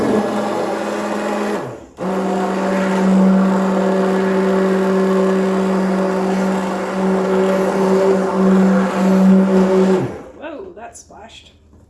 Whoa, that splashed.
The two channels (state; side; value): identical; both; correlation 1.00